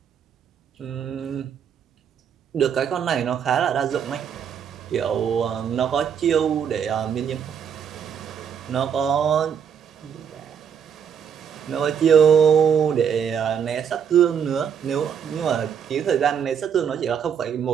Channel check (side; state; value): left; quieter; 7.8 dB